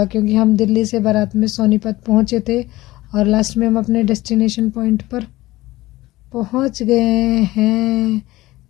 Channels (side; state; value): right; quieter; 18.1 dB